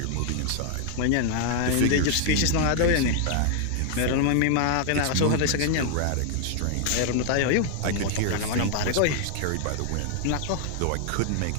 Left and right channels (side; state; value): both; different; correlation 0.00